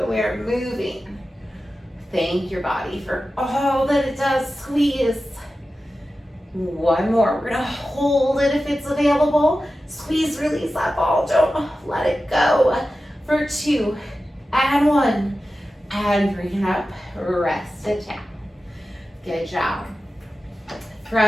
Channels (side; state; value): both; normal; correlation 0.93